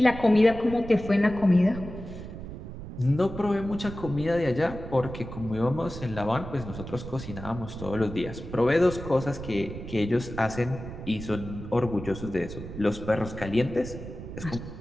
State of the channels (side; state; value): right; noise; rumble, 10 dB below the sound